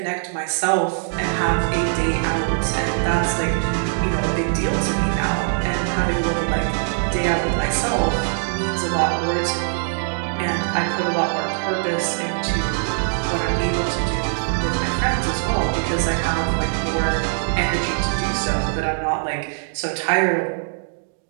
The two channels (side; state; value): left; silent; digital silence